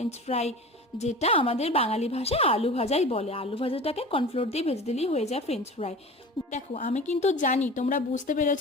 ফ্রাই, যেটা আমাদের বাঙালি ভাষায় আলু ভাজাই বলে। আলু ভাজাটাকে কর্নফ্লোর দিয়ে ভেজে দিলেই হয়ে যায় ফ্রেঞ্চ ফ্রাই। দেখো, আমি কিন্তু জানি তোমরা বুঝতে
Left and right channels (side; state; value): both; normal; correlation 0.36